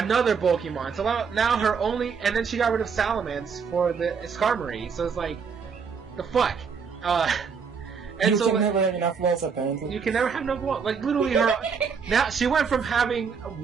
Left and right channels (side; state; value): left; quieter; 6.0 dB